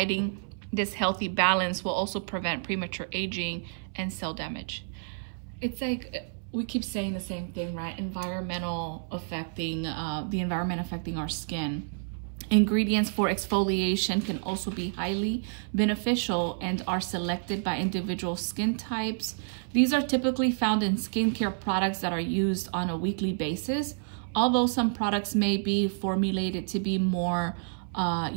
this healthy balance will also prevent premature aging and cell damage. It's like, we keep saying the same thing, right? The environment affecting our skin. Ingredients for exfoliation can also be highly beneficial and are selected by individual skin types. These are typically found in skincare products that are used on a weekly basis, although some products may be formulated to be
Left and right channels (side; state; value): left; silent; 58 dB below the other